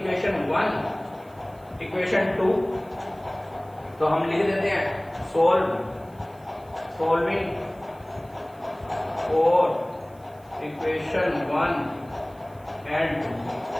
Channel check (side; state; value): right; noise; hiss, 29 dB below the sound